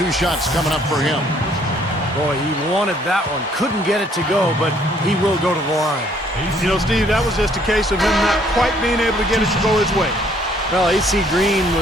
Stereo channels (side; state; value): both; normal; correlation 0.63